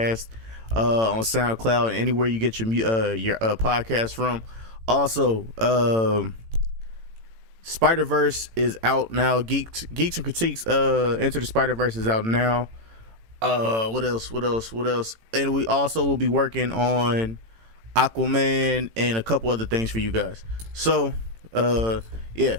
on SoundCloud and anywhere you get your podcast from. Also, Spider-Verse is out now. Geeks and Critiques Enter the Spider-Verse is out now. What else? And we also will be working on Aquaman and a couple other things for you guys. So, yeah,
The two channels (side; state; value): left; late; 18 ms